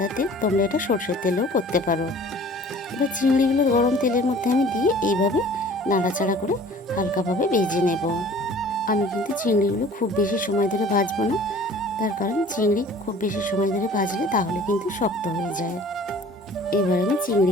তেল, তোমরা এটা সরষের তেলেও করতে পারো। এবার চিংড়িগুলো গরম তেলের মধ্যে আমি দিয়ে এইভাবে নাড়াচাড়া করে হালকাভাবে ভেজে নেব। আমি কিন্তু চিংড়িগুলো খুব বেশি সময় ধরে ভাজবো না, তার কারণ চিংড়ি খুব বেশি সময় ধরে ভাজলে তাহলে কিন্তু শক্ত হয়ে যায়। এবার আমি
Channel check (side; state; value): both; normal; correlation 0.48